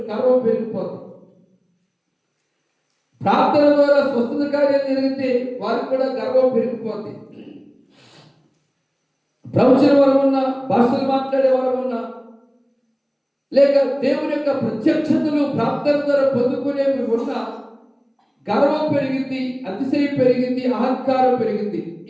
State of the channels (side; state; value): both; identical; correlation 1.00